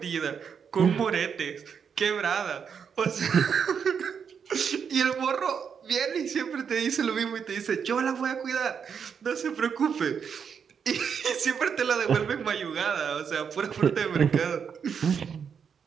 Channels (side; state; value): left; quieter; 6.9 dB